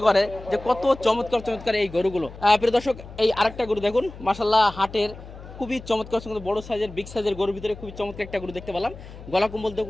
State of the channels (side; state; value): left; noise; hum, 15 dB below the sound